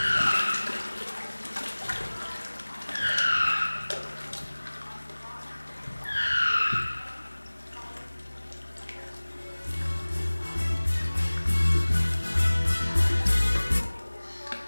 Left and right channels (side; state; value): both; inverted; correlation -1.00